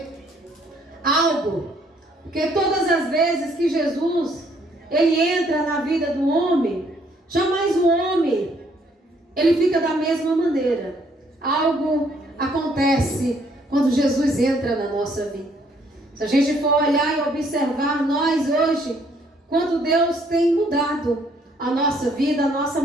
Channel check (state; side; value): normal; both; correlation 0.66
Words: algo. Porque todas as vezes que Jesus, ele entra na vida do homem, jamais o homem, ele fica da mesma maneira. Algo acontece quando Jesus entra na nossa vida. Se a gente for olhar e observar nós hoje, quanto Deus tem mudado a nossa vida, a nossa